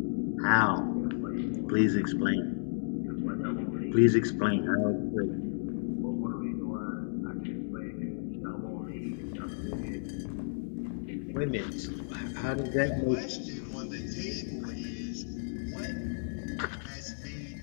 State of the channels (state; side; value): silent; right; digital silence